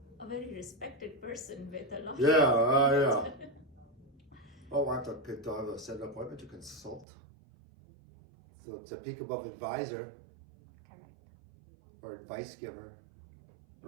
a very respected person with a lot Yeah. Oh, I have to set an appointment to consult. So it's a peak above advisor. Correct. Or advice giver,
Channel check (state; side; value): drops out; left; at 7.1 s